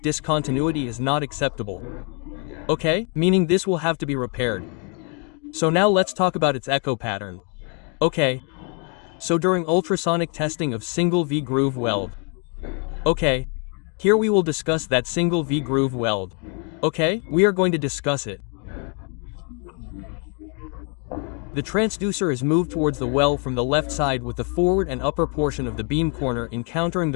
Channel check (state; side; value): quieter; right; 38.0 dB